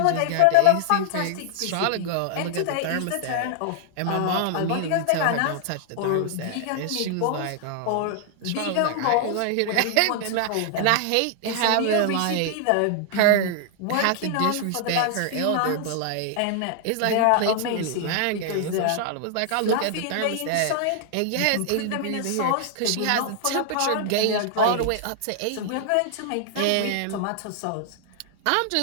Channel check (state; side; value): different; both; correlation 0.00